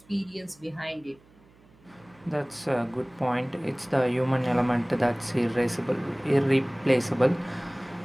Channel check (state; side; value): noise; right; hum, 29 dB below the sound